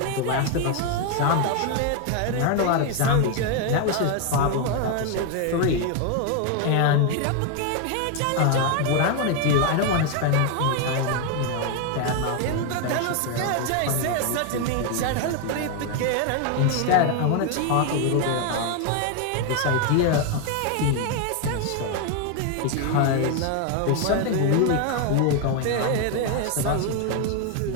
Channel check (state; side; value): different; both; correlation 0.01